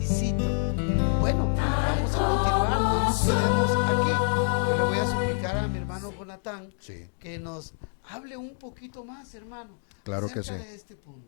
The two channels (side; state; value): right; silent; 57 dB below the other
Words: Bueno, vamos a continuar, no nos quedemos aquí. Yo le voy a suplicar a mi hermano Jonathan Sí. que nos hable un poquito más, hermano. Claro que acerca sí. de este